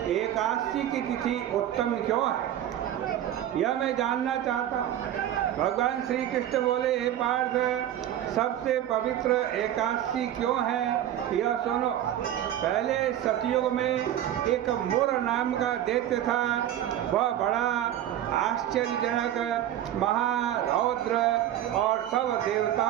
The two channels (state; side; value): quieter; left; 11.6 dB